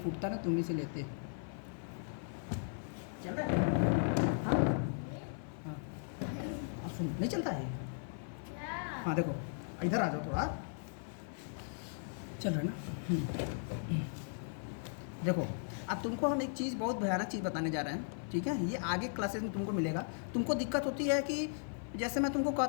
ना तुम ही से लेते। चल रहा है? हाँ हाँ सुन, नहीं चलता है? हाँ देखो, इधर आ जाओ थोड़ा। चल रहा है ना? देखो, अब तुमको हम एक चीज़, बहुत भयानक चीज़ बताने जा रहे हैं, ठीक है? ये आगे क्लासेस में तुमको मिलेगा। तुमको दिक्कत होती है कि जैसे मैं तुमको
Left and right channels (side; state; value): right; silent; 53 dB below the other